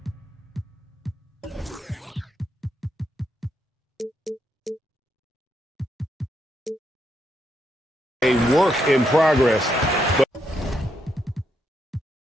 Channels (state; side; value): normal; both; correlation 0.79